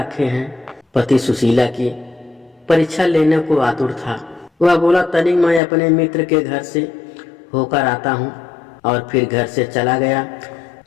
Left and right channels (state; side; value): drops out; right; at 5.6 s